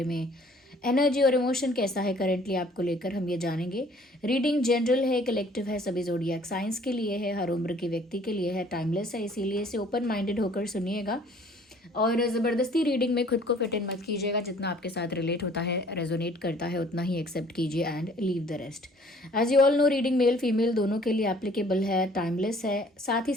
में, एनर्जी और इमोशन कैसा है करेंटली आपको लेकर हम ये जानेंगे। रीडिंग जनरल है, कलेक्टिव है, सभी ज़ोडिएक साइंस के लिए है, हर उम्र के व्यक्ति के लिए है, टाइमलेस है, इसीलिए इसे ओपन माइंडेड होकर सुनिएगा और ज़बरदस्ती रीडिंग में खुद को फिट इन मत कीजिएगा। जितना आपके साथ रिलेट होता है, रेजोनेट करता है, उतना ही एक्सेप्ट कीजिए and leave the rest. As you all know, reading male female दोनों के लिए एप्लीकेबल है, टाइमलेस है। साथ ही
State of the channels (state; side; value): normal; both; correlation 0.56